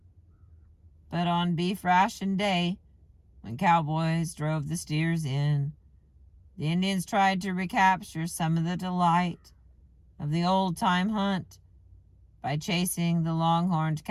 But on beef ration day, when cowboys drove the steers in, the Indians tried to recapture some of the delight of the old-time hunt by chasing the long-horned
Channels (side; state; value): both; identical; correlation 1.00